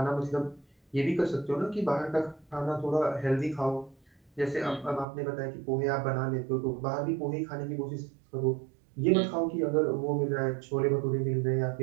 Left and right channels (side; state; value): left; drops out; at 5.1 s